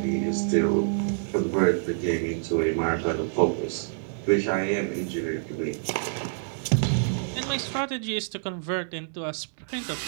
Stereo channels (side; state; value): left; silent; digital silence